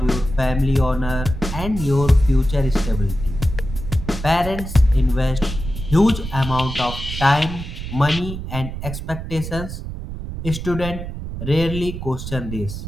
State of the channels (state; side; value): noise; right; rumble, 7 dB below the sound